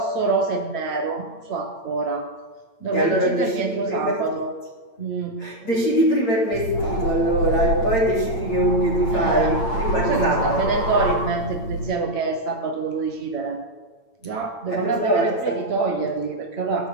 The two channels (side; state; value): right; late; 8.8 ms